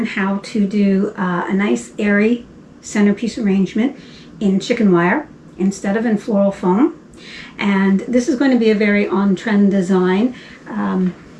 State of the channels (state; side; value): identical; both; correlation 1.00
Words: how to do a nice airy centerpiece arrangement in chicken wire instead of in floral foam. And this is going to be a very on-trend design